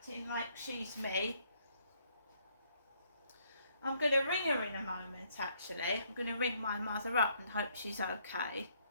like she's me. I'm going to ring her in a moment, actually. I'm going to ring my mother up and hope she's okay.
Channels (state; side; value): inverted; both; correlation -0.68